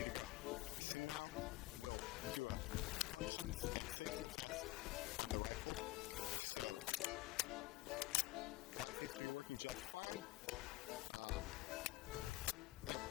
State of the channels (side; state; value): right; quieter; 19.2 dB